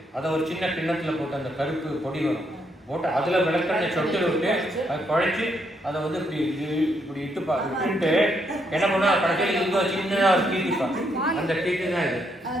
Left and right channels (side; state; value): both; normal; correlation 0.76